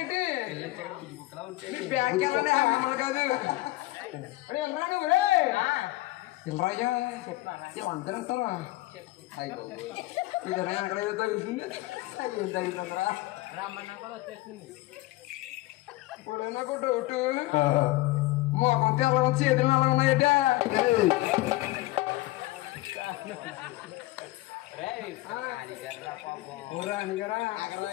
బ్యాగ్ వెళ్ళండి మిమ్మల్ని కాదు వెళ్ళరా నువ్వు వెళ్ళరాయ్యా అందరూ వస్తారా ఇదేనా అక్కడ ఏదో తగులుతుంది ఏం తగులుతుందిరా ఇప్పుడు నాకు డౌట్ మోకం తెల్ల చేతులు ఎలా ఉన్నాయట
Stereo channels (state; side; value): quieter; right; 18.8 dB